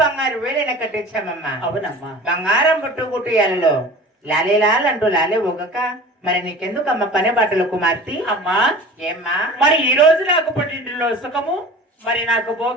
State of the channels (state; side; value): normal; both; correlation 0.40